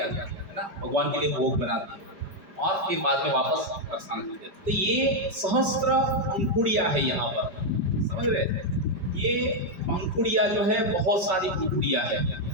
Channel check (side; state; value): left; late; 5.0 ms